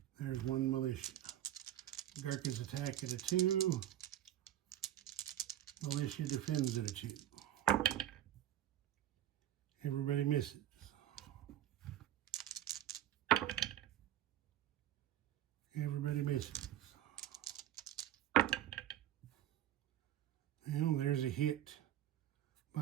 There's 1 militia. Gurkhas attack at a 2. Militia defends at a 2. Everybody misses. Everybody misses. Well, there's a hit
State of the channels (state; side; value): quieter; left; 12.2 dB